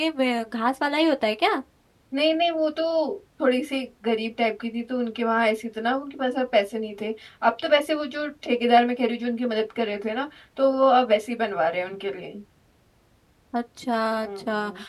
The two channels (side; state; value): both; identical; correlation 1.00